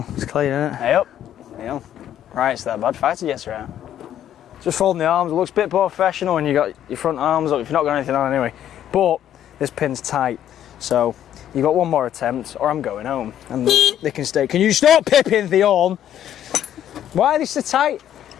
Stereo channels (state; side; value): quieter; right; 10.7 dB